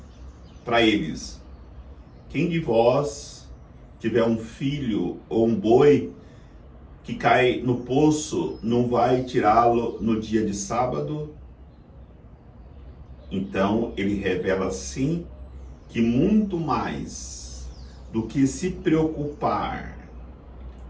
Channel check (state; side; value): identical; both; correlation 1.00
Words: eles: quem de vós tiver um filho ou um boi que cai no poço, não vai tirá-lo no dia de sábado? Então ele revela assim que muito mais do que se preocupar